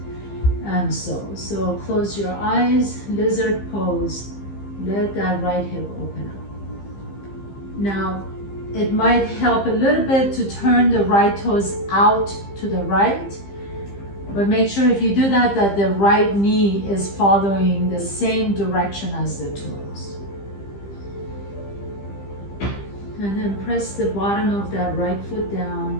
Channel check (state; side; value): late; right; 15 ms